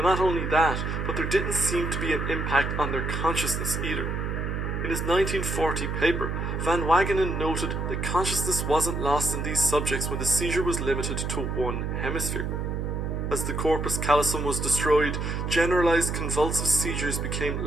not only that, but there didn't seem to be an impact on their consciousness either. In his 1940 paper, Van Wagenen noted that consciousness wasn't lost in these subjects when the seizure was limited to one hemisphere. As the corpus callosum was destroyed, generalized convulsive seizures became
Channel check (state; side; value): noise; right; hum, 2 dB below the sound